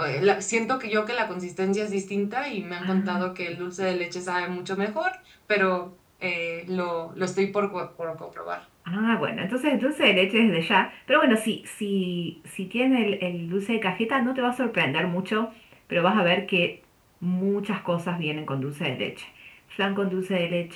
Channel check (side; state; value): both; identical; correlation 1.00